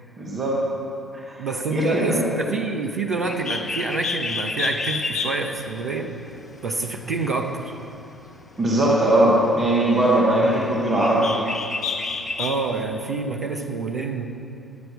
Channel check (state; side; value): normal; both; correlation 0.58